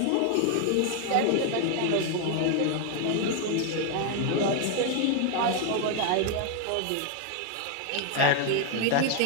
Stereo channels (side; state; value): both; different; correlation 0.00